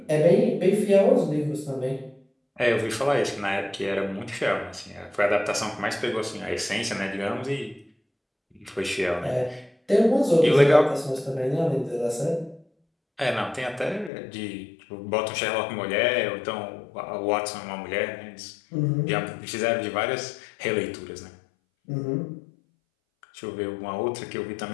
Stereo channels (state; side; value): drops out; right; at 14.1 s